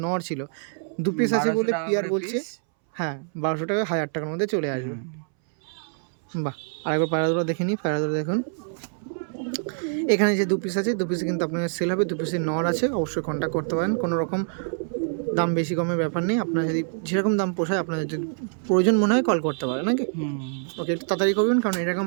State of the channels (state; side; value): silent; left; 62 dB below the other